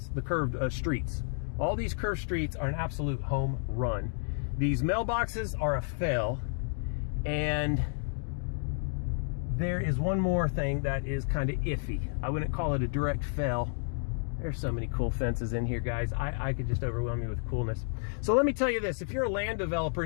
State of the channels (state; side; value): silent; right; digital silence